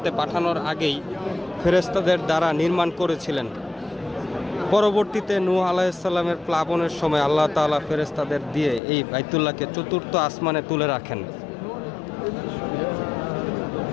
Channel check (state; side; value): drops out; right; at 8.8 s